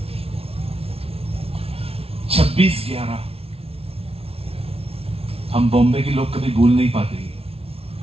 छब्बीस 11 हम बॉम्बे के लोग कभी भूल नहीं पाते।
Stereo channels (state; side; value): late; left; 0.29 ms